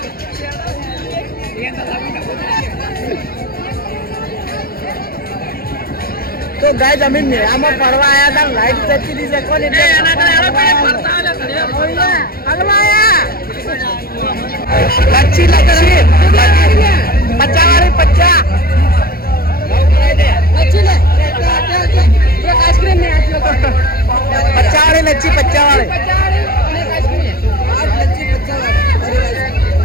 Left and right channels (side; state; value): right; late; 0.44 ms